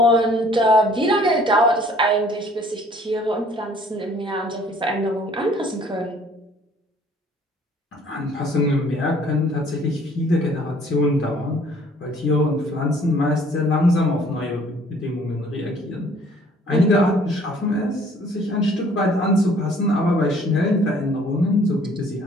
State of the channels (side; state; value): both; normal; correlation 0.57